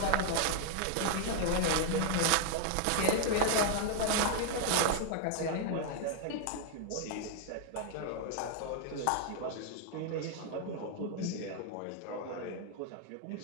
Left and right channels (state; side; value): different; both; correlation -0.01